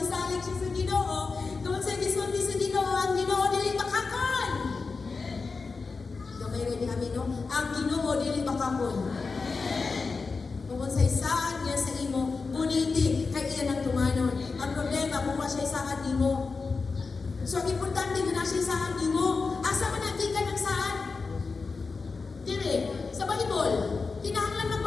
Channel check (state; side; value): quieter; right; 4.4 dB